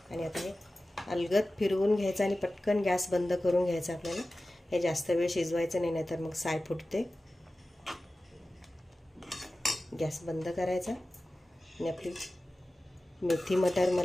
आणि आता हे अलगद फिरवून घ्यायचं आणि पटकन गॅस बंद करून घ्यायचा आपल्याला. हे जास्त वेळ शिजवायचं नाही, नाहीतर मग साय फुटते. गॅस बंद करायचा आणि आपली मेथी मटर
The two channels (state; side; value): normal; both; correlation 0.95